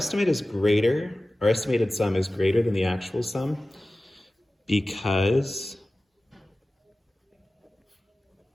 is greater, our estimated sum is greater than the actual sum because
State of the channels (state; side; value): normal; both; correlation 0.96